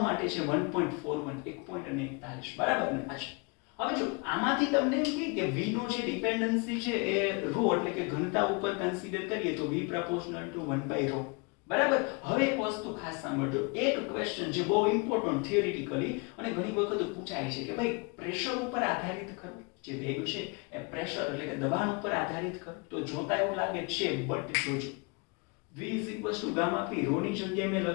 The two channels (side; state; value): right; quieter; 30.5 dB